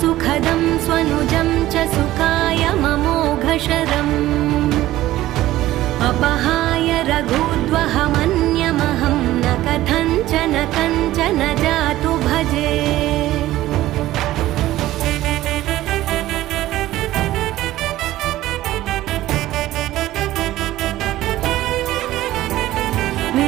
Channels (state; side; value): quieter; left; 15.3 dB